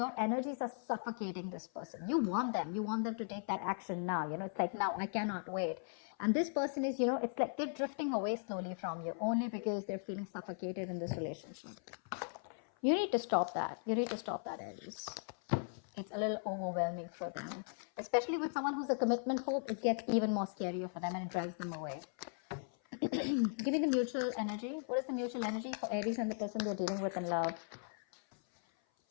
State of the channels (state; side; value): silent; right; 52 dB below the other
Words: energies are suffocating this person. You want them to take that action now. It's like, now I cannot wait. And this person is, it's like they're drifting away slowly from you only because they're feeling suffocated in this relationship. You need to stop that. Aries. It's a little overwhelming for them. Especially with someone who's a commitment phobe, it gets even more scarier for them and it drives them away. Give me the mutual energy. What is the mutual energy for Aries and the person they're dealing with in love?